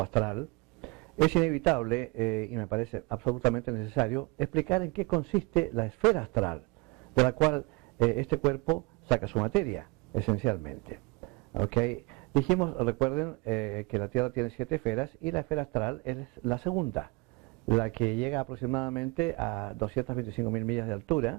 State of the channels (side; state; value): left; quieter; 26.7 dB